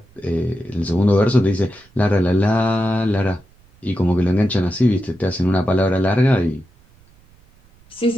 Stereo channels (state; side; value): noise; right; rumble, 29 dB below the sound